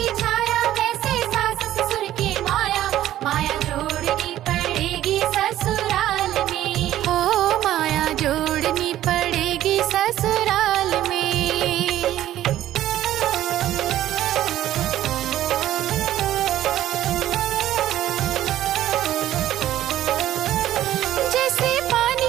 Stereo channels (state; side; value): quieter; left; 13.1 dB